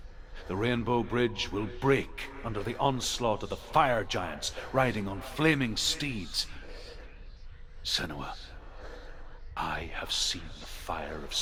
The rainbow bridge will break under the onslaught of the fire giants riding on flaming steeds. Senua, I have seen the fire of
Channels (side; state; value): both; identical; correlation 1.00